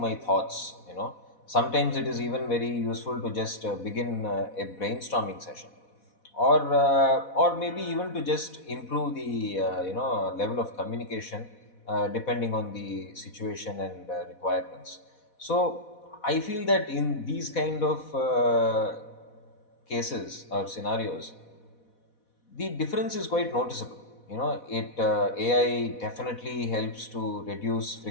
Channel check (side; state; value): right; late; 4.1 ms